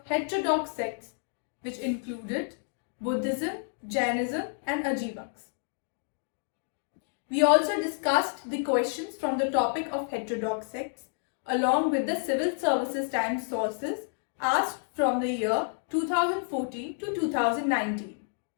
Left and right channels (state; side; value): silent; right; 58 dB below the other